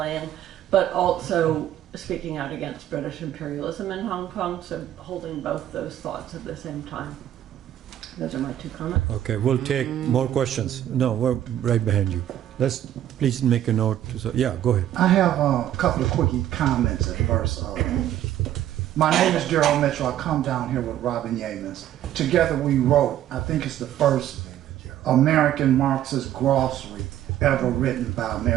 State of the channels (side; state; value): left; quieter; 11.9 dB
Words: but also speaking out against British imperialism in Hong Kong, so holding both those thoughts at the same time. Those are my 2 comments. Okay, we'll take more questions. No, we're right behind you. Let's please make a note. So, yeah, go ahead. I have a couple of quickie comments at first. My name is Darrell Mitchell. I come down here with Robin Yeamans. Together we wrote, I think it's the first American Marxist glossary ever written by